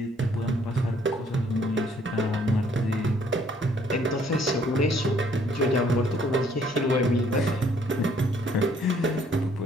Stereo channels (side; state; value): both; normal; correlation 0.63